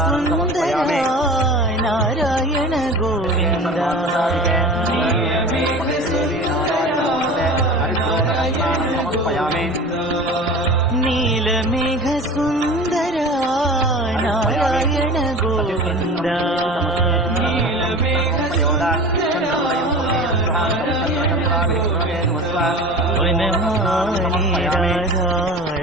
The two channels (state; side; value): normal; both; correlation 0.36